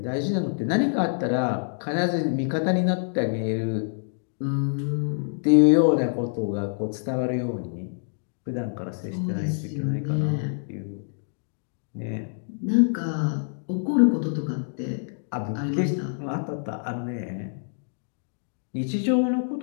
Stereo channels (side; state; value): right; silent; digital silence